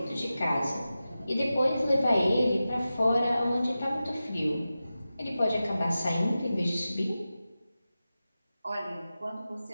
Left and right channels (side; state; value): both; inverted; correlation -0.94